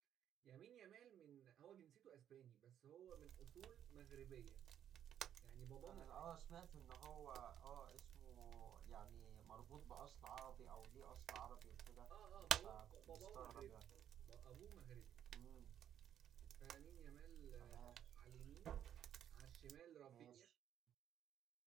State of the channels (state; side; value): quieter; left; 10.0 dB